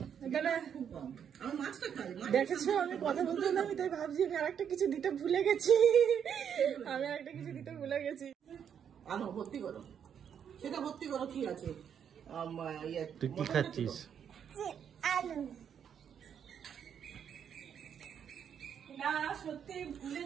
তাহলে খুব কম। আমি মাছটা খাই। দেখেছো আমি কথা বলতে হলাম, আমি তাই ভাবছি আমি আরেকটা কিছু দিতে ভুলে গেছি। আনো ভর্তি করো, সেটা ভর্তি করো, কি আছে? তুই কি খাচ্ছিস? আলু না সত্যি ভুলে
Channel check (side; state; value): left; quieter; 8.2 dB